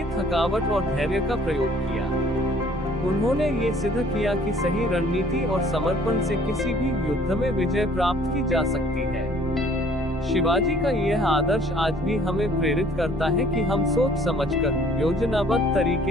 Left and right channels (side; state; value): both; normal; correlation 0.56